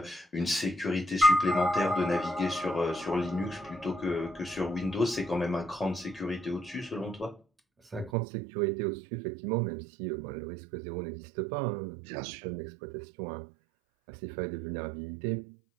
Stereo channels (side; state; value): left; drops out; at 8.1 s